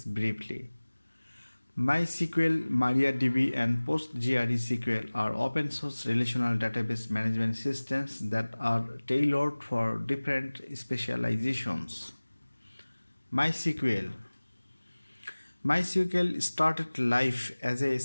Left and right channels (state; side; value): inverted; both; correlation -1.00